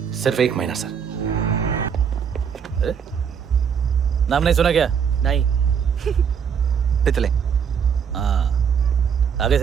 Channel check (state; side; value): quieter; left; 7.2 dB